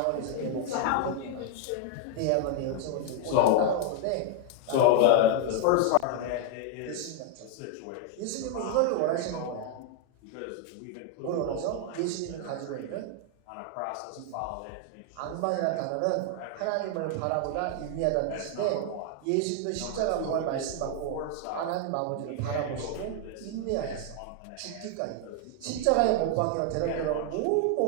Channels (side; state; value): both; different; correlation 0.00